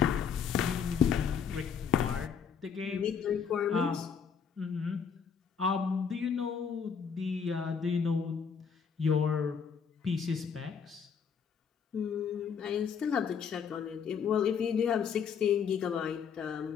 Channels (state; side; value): quieter; right; 6.8 dB